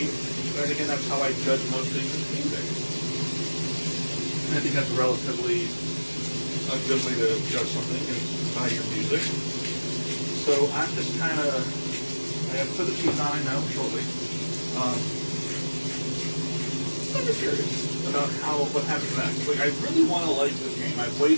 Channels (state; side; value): inverted; both; correlation -1.00